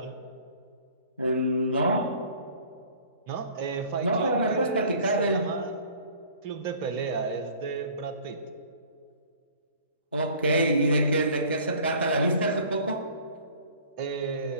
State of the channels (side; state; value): both; inverted; correlation -0.50